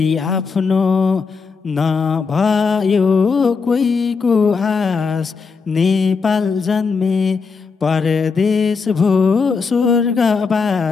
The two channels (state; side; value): quieter; right; 5.0 dB